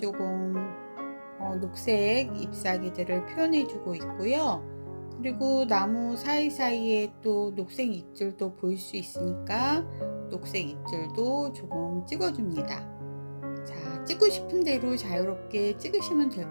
녹색 잎사귀들을 표현해 주고 있고요. 그리고 나무 사이사이에 또 녹색 잎들도 보일 수 있으니까 녹색 잎들도 조금 찍어줍니다. 자, 찍고 싶은 대로 자유롭게 찍으시면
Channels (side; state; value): both; inverted; correlation -1.00